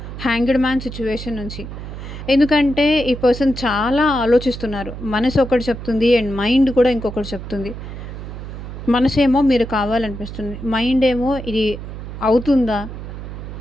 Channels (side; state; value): right; noise; hum, 10 dB below the sound